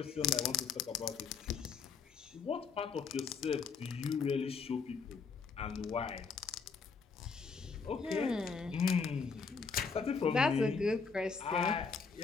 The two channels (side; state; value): right; quieter; 5.3 dB